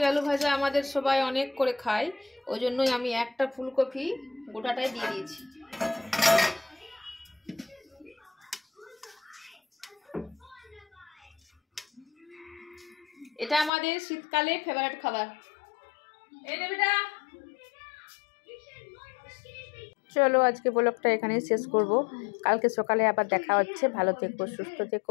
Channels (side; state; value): right; drops out; at 13.7 s